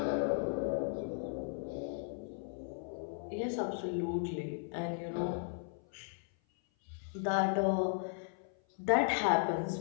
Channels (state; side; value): silent; right; 54 dB below the other